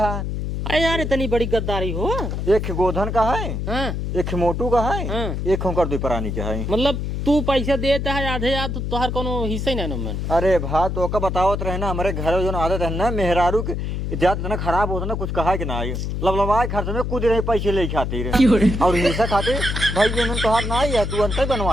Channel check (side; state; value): left; noise; hum, 3 dB below the sound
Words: अरे यार इतनी बड़ी गद्दारी हो एक गोधन का है हाँ एक मोटू का है हाँ। एक होकर दो प्राणी का है मतलब तू पैसा देता है आधे याद तोहर कोनो हिस्सा ही नहीं मन अरे भा तो का बतावत रहे ना हमारे घर जो आदत है ना मेहरारू के ज्यादा इतना खराब होता ना कुछ कहा कि ना आई लबलबाए खर्च में कूद रहे पैसे ले खातिर और हिस्सा खातिर भाई ये मन तोहार ना आई है तू अंत